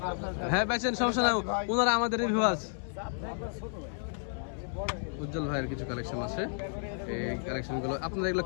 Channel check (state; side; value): silent; right; digital silence